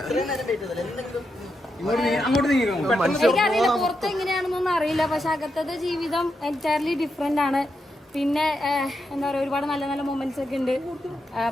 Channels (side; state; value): both; normal; correlation 0.84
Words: എനിക്കറിയില്ല പുറത്ത് എങ്ങനെയാണെന്നൊന്നും അറിയില്ല. പക്ഷെ അകത്തത്തെ ജീവിതം എൻറ്റയർലി ഡിഫറെന്റ് ആണ്. പിന്നെ എന്താ പറയുക, ഒരുപാട് നല്ല നല്ല മൊമെന്റ്സ് ഒക്കെ ഉണ്ട്.